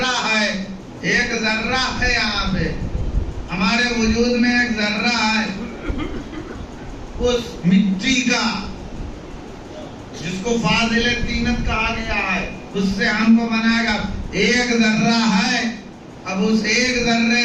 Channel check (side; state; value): both; identical; correlation 1.00